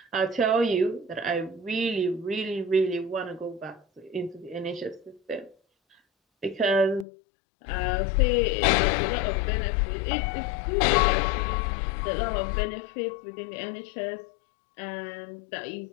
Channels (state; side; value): drops out; right; at 7.1 s